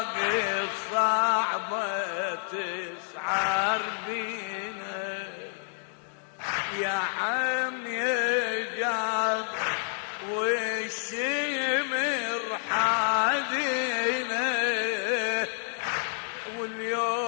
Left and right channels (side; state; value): right; silent; digital silence